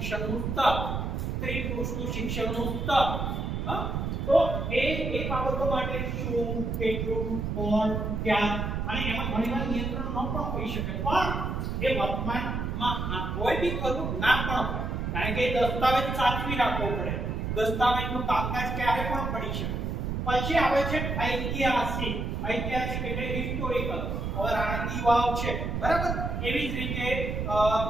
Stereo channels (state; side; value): noise; right; rumble, 2 dB below the sound